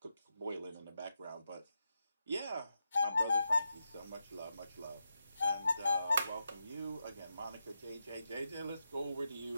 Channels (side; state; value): both; inverted; correlation -0.86